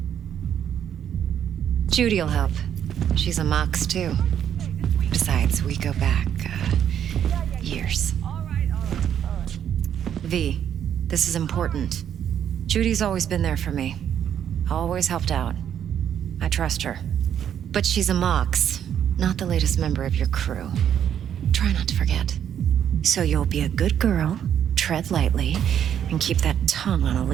Judy'll help. She's a Mox, too. Besides, we go back, years. V, this is important. Judy's always been there for me. Always helped out. I trust her. But she's a Mox, not the latest member of your crew. Try not to forget. So you'll be a good girl, tread lightly, and keep that tongue on a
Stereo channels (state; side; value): quieter; left; 9.4 dB